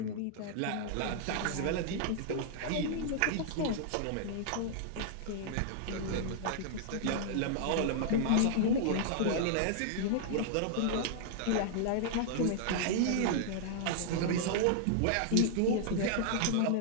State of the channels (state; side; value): different; both; correlation -0.01